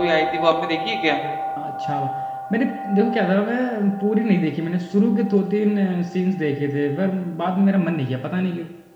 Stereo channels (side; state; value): both; identical; correlation 1.00